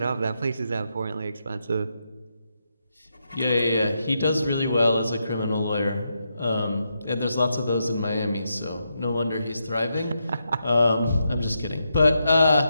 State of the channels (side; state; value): both; inverted; correlation -0.83